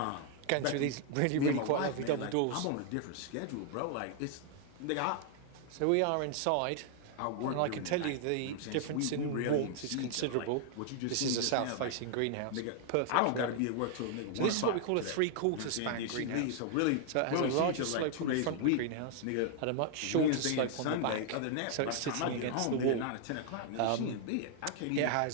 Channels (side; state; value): both; different; correlation 0.00